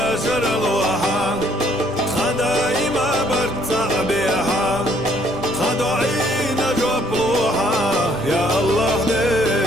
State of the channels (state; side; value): normal; both; correlation 0.65